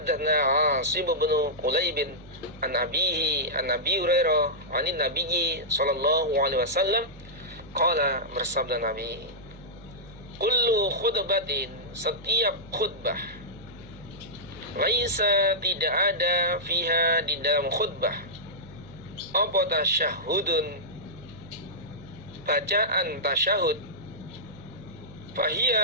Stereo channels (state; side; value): noise; right; hum, 20 dB below the sound